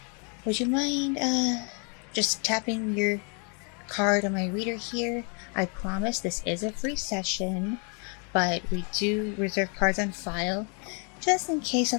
Would you mind just tapping your card on my reader here? I promise this is a free session, but we do reserve cards on file just in case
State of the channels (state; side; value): quieter; right; 36.6 dB